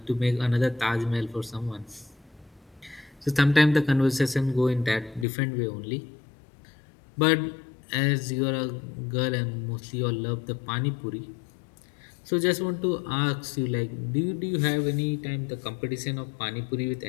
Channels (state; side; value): drops out; right; at 5.2 s